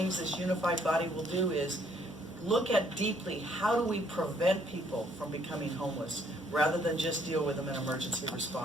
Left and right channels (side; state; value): both; normal; correlation 0.66